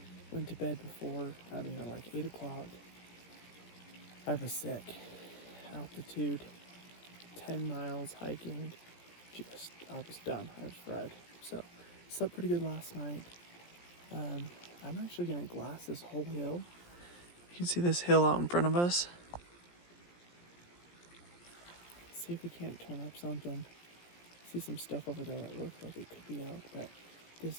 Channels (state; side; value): late; right; 17 ms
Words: Went to bed before, like 8 o'clock. I was sick. Altitude, 10 miles hiking. I was done. I was fried. So, slept pretty good last night. I'm actually gonna glass this whole hill. You can see this hill out in front of us. See if we can't turn up something. See some stuff over there that looks like it could be elk, but